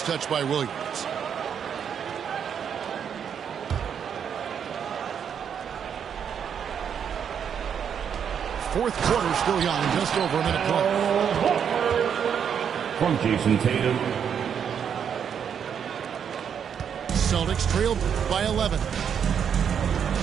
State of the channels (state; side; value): quieter; left; 7.9 dB